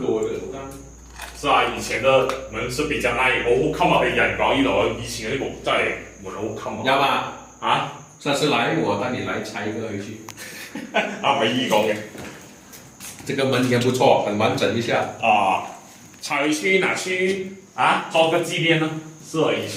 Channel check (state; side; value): identical; both; correlation 1.00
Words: 嘅嗰間。是啊，以前嘅門是比較難，好襟啊！佢人講呢度，以前嗰啲木真係門好襟啊。有嘛？啊？下次來我帶你來拆一個回去。唔係依講嘅。這個門也不錯，很完整一下。拆回去拿去裝個紀念呢？是啊，以